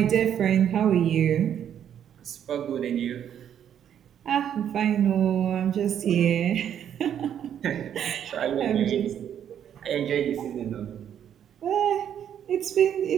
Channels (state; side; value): quieter; left; 9.4 dB